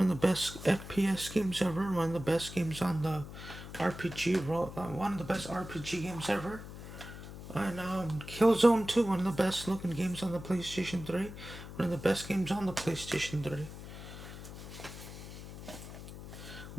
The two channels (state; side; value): noise; left; hum, 12 dB below the sound